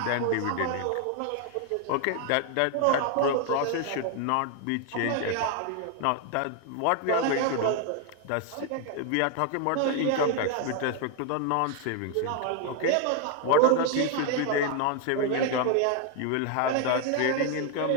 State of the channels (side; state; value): both; different; correlation 0.01